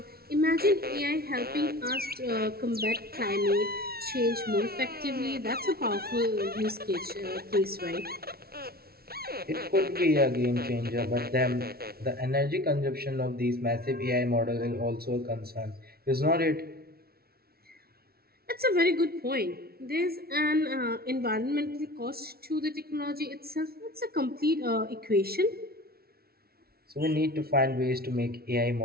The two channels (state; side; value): late; left; 0.44 ms